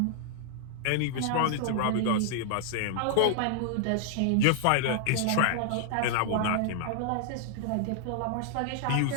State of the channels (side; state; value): both; different; correlation 0.00